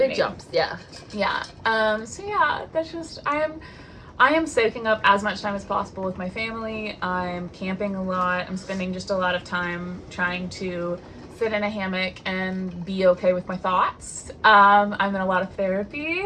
Nate. jumps, yeah. Yeah. So yeah, that's just, I am soaking up as much time as possible with my family. I'm camping a lot. I'm spending just a lot of time trying to sit in a hammock and be okay with my thoughts. I'm in a lot of therapy,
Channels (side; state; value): both; identical; correlation 1.00